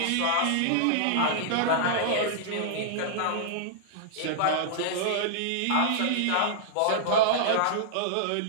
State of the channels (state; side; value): different; both; correlation -0.01